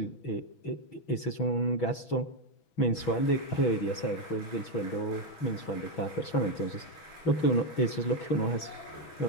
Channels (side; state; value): right; late; 6.2 ms